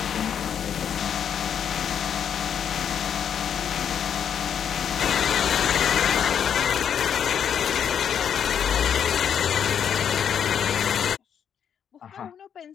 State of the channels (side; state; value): right; quieter; 8.3 dB